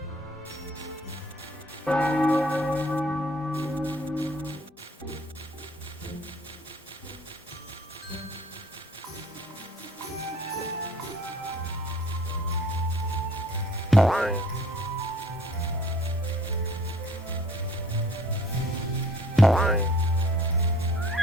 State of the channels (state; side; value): normal; both; correlation 0.55